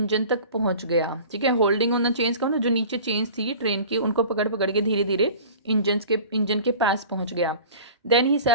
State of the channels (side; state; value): both; inverted; correlation -0.42